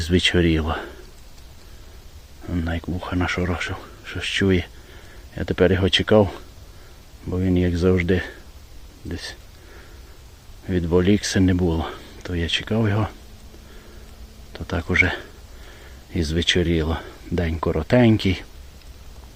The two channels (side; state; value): both; identical; correlation 1.00